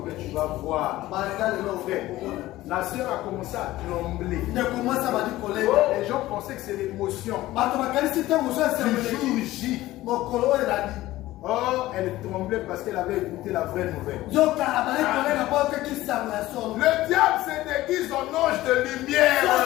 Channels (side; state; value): right; quieter; 16.5 dB